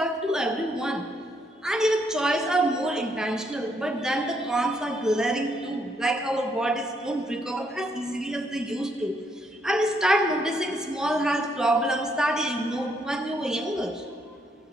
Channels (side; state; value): both; normal; correlation 0.74